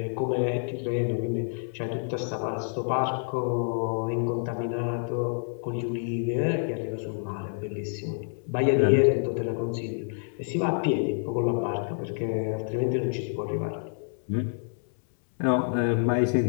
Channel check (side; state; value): right; silent; 59 dB below the other